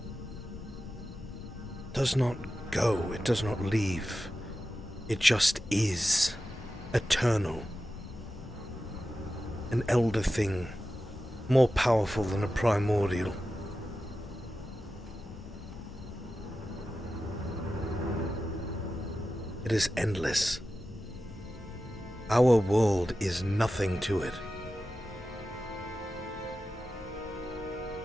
does not go, it does not leave. It just is eternal. An elder thing, more powerful than a primordial. It is endless. Our world is nothing to it.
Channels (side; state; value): both; normal; correlation 0.93